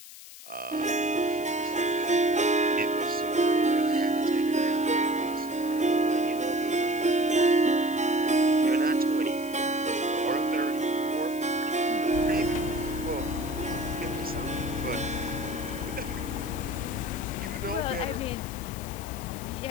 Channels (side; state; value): left; noise; hiss, 16 dB below the sound